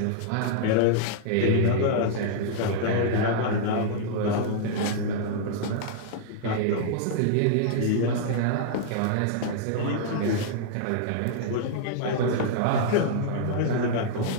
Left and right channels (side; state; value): both; different; correlation -0.01